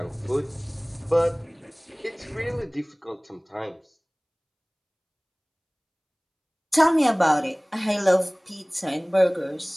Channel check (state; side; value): identical; both; correlation 1.00